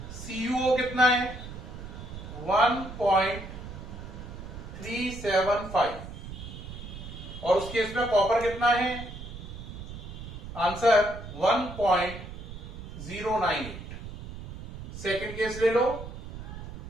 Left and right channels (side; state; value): right; noise; rumble, 11 dB below the sound